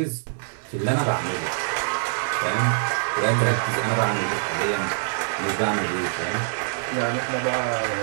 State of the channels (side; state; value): left; silent; digital silence